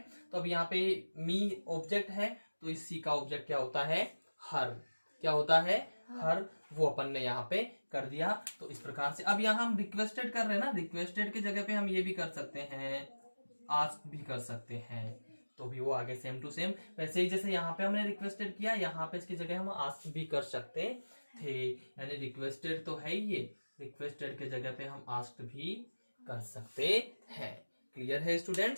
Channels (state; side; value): inverted; both; correlation -1.00